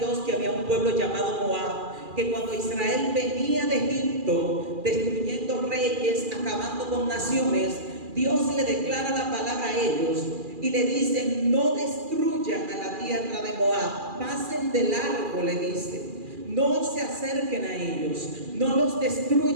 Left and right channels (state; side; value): late; left; 2.4 ms